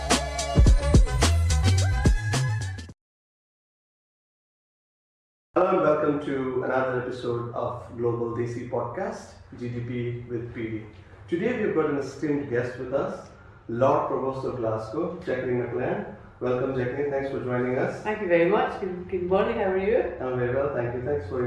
Hello and welcome to another episode of Global DC Podcast, GDP with PD. Today we've got an esteemed guest with us, Lord Provost of Glasgow, Jac Mclan. Welcome, Jacqueline. Thanks for joining us. Thank you very much. Good morning. How are you? I'm very well, thank you. Thanks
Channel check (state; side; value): identical; both; correlation 1.00